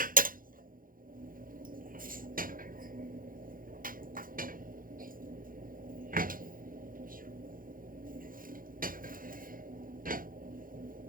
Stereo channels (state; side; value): late; left; 0.40 ms